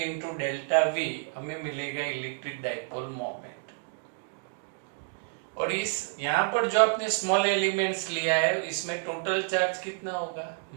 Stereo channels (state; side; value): silent; left; digital silence